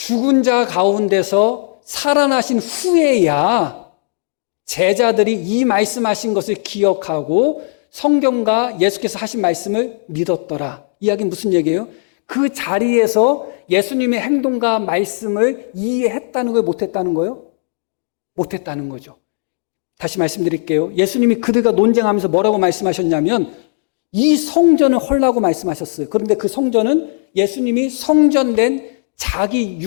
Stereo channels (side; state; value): right; silent; digital silence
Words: 자 가운데서 살아나신 후에야 제자들이 이 말씀하신 것을 기억하고 성경과 예수께서 하신 말씀을 믿었더라. 이야기는 무슨 얘기예요? 그 자리에서 예수님의 행동과 말씀을 이해했다는 거예요? 못했다는 거예요? 못했다는 거죠. 다시 말씀드릴게요. 예수님이 그들과 논쟁하면서 뭐라고 말씀하셨냐면 이 성전을 헐라고 말씀하셨어요. 그런데 그 성전은 예수님이 성전된 자기